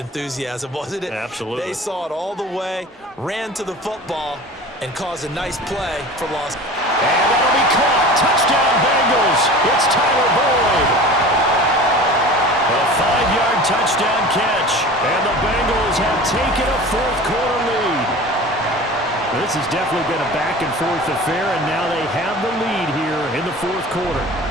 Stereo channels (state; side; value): normal; both; correlation 0.38